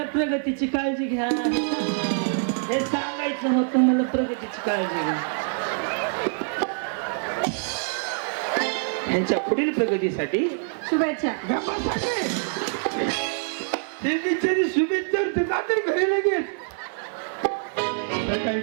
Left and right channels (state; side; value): silent; left; digital silence